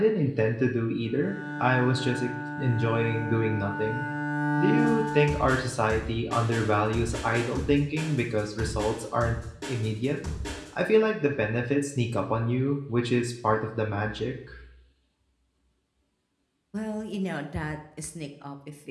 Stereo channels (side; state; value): both; identical; correlation 1.00